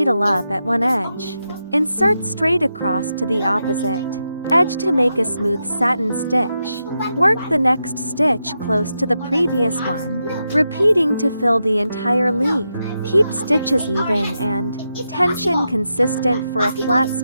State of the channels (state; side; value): inverted; both; correlation -0.87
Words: up at one edge. Insert straight across to the opposite edge to make a smooth satin stitch. Work the next stitch close to the previous one, repeating to fill the entire leaf. Keep stitches even and tension consistent for a flat,